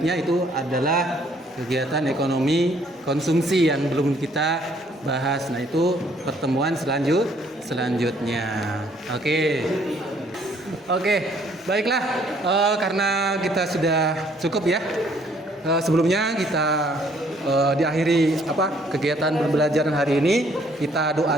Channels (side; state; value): both; normal; correlation 0.64